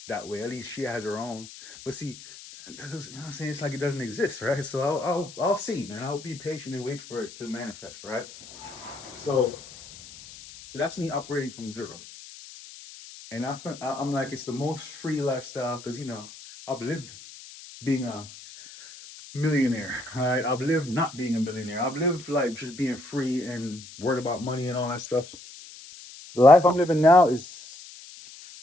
that way. At least she has her own. But see, you know what I'm saying? It's like it doesn't exist, right? So I'll see, man. I'll be patient and wait for it to manifest, right? So that's me operating from zero. And I think I'm like it's the most free lifestyle because I've lived being a millionaire. All right, I've lived not being a millionaire. I've lived like just being free and worried about money and all that stuff. The life I'm living now is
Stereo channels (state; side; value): noise; left; hiss, 17 dB below the sound